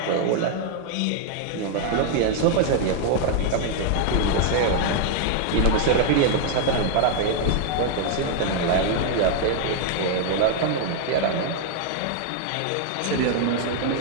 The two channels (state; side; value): different; both; correlation 0.00